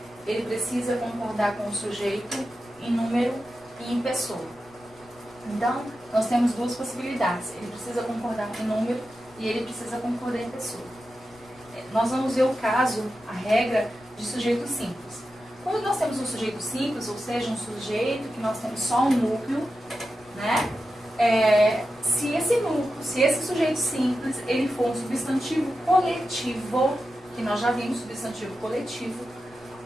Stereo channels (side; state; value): left; noise; rumble, 27 dB below the sound